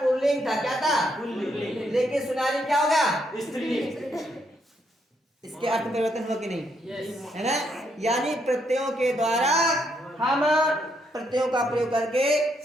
था। क्या था? लेकिन सुनारी क्या होगा? इसके अर्थ में परिवर्तन हुआ कि नहीं? है ना। यानी प्रत्ययों के द्वारा हम प्रत्ययों का प्रयोग करके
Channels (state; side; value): normal; both; correlation 0.75